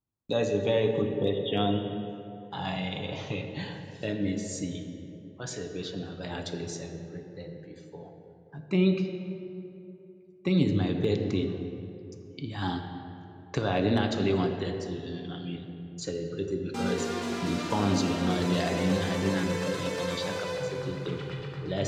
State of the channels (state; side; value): identical; both; correlation 1.00